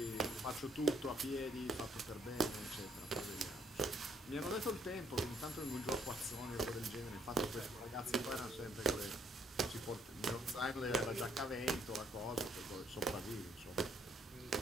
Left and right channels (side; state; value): both; normal; correlation 0.67